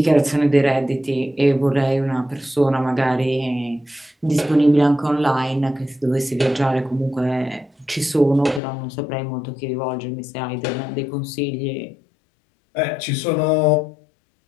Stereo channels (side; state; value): right; drops out; at 8.6 s